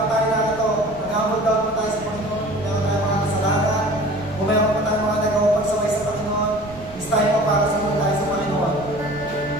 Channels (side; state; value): right; noise; rumble, 19 dB below the sound